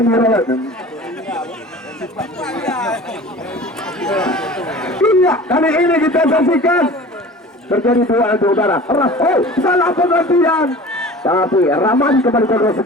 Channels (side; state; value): both; normal; correlation 0.40